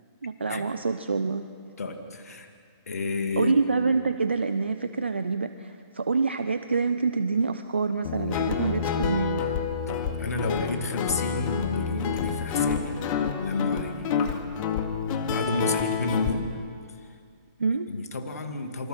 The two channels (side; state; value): both; inverted; correlation -0.60